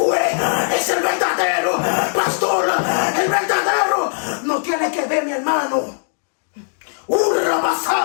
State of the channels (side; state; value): right; silent; 65 dB below the other